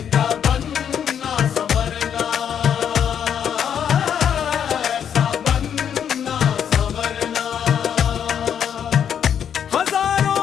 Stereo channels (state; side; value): quieter; right; 8.5 dB